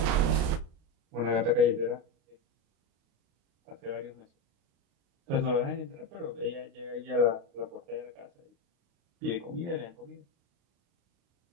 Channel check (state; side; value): late; left; 35 ms